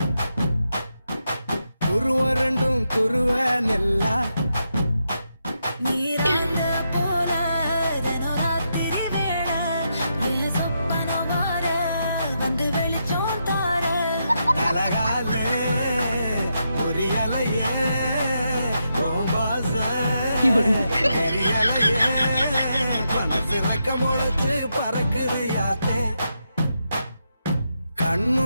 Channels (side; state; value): both; inverted; correlation -0.83